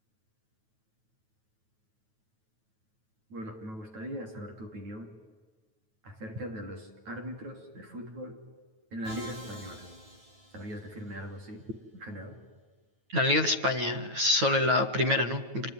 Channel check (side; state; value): left; late; 9.2 ms